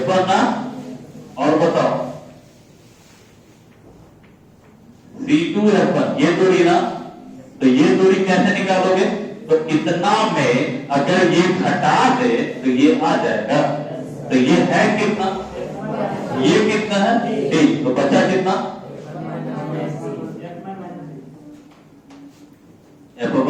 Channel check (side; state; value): both; identical; correlation 1.00